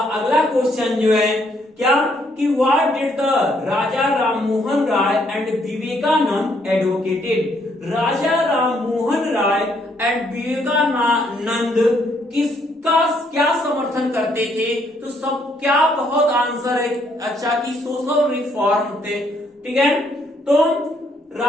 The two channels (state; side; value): normal; both; correlation 0.70